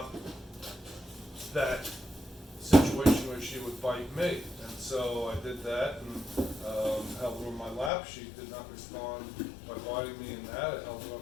that situation where she would bite me. And so I did that and held her on my lap. She did not respond by biting me in that. I held her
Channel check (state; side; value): drops out; right; at 7.9 s